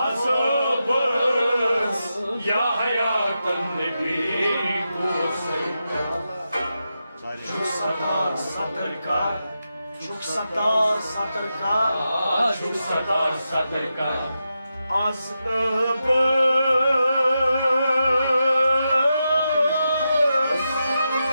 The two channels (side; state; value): both; inverted; correlation -0.88